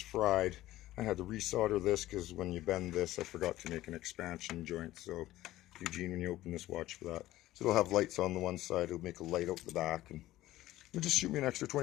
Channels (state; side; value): quieter; right; 15.7 dB